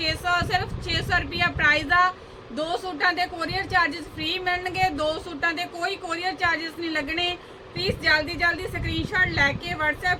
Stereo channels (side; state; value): both; identical; correlation 1.00